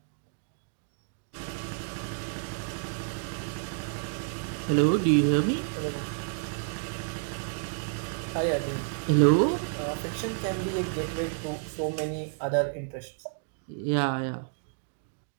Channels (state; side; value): silent; left; digital silence